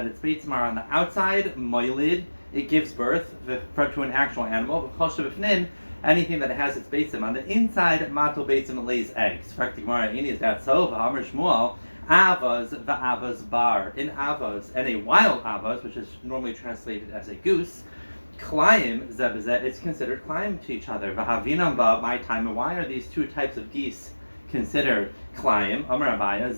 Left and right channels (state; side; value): inverted; both; correlation -1.00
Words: its beitzim are on the outside, moilid, it gives birth to an actual animal. Kol shebifnin, anything that has its beitzim on the inside, matul beitzim, it lays eggs. Zakti Gemara. Ini is that so? V'amar Shmuel. Avaz v'avaz bar. In avaz and a wild avaz, which is normally translated as a goose. Klayim zebezet, it's considered klayim to each other. V'havinam ba, my time. And why are these two types of geese considered klayim? Amar Abaya,